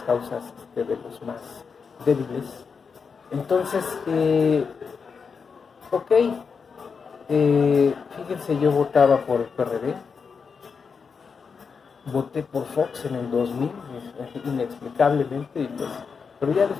causas de los más débiles. Entonces, fíjense, yo votaba por el PRD, voté por Fox en el 2000, inexplicablemente, pero ya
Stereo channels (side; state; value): right; quieter; 5.6 dB